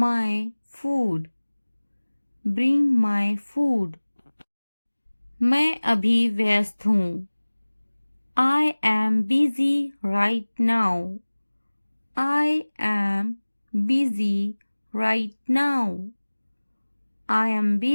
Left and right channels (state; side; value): inverted; both; correlation -1.00